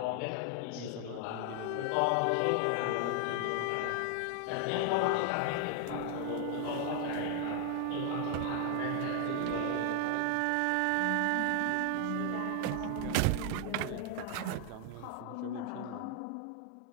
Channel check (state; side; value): different; both; correlation 0.00